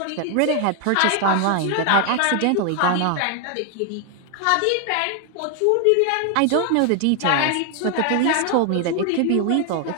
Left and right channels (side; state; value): both; different; correlation 0.00